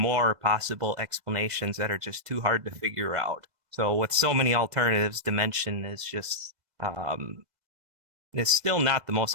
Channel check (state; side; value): late; left; 2.0 ms